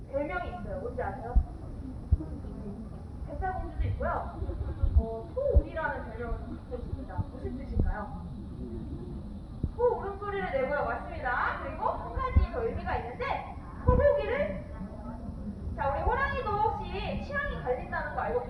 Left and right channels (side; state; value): both; identical; correlation 1.00